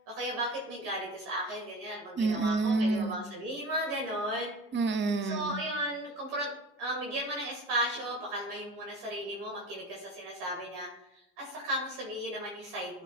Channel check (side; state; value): both; normal; correlation 0.33